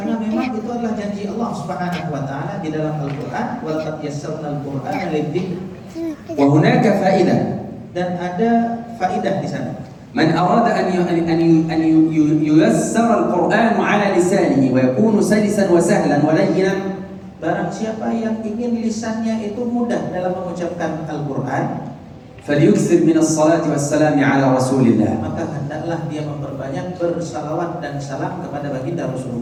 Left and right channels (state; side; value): identical; both; correlation 1.00